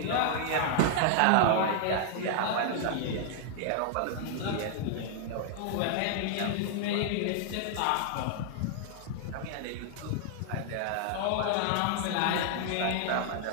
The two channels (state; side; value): different; both; correlation -0.01